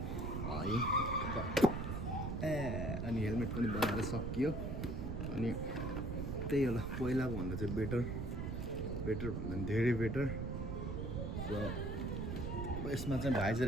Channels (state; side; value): noise; right; rumble, 3 dB below the sound